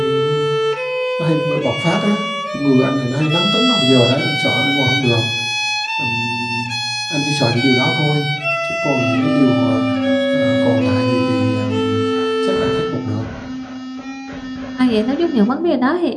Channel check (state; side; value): identical; both; correlation 1.00